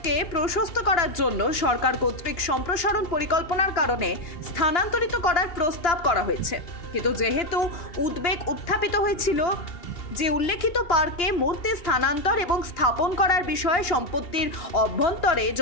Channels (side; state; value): right; late; 2.9 ms